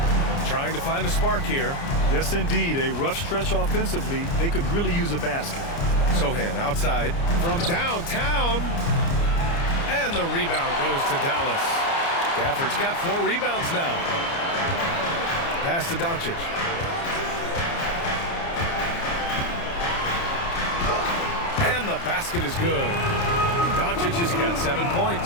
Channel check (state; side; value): late; right; 29 ms